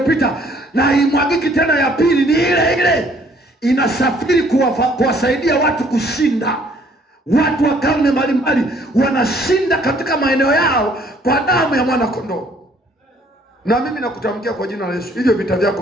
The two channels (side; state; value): both; normal; correlation 0.61